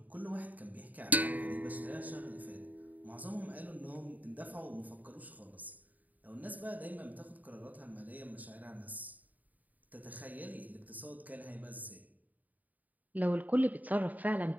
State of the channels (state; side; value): late; left; 0.078 ms